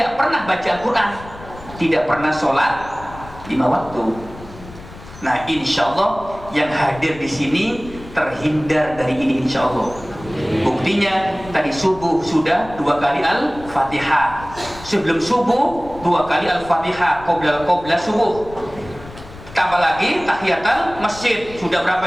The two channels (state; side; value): noise; left; rumble, 17 dB below the sound